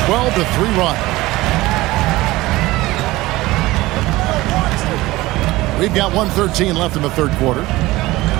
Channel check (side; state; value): left; quieter; 18.9 dB